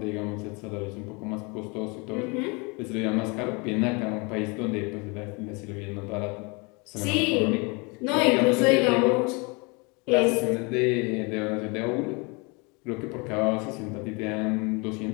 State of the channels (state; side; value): quieter; right; 29.4 dB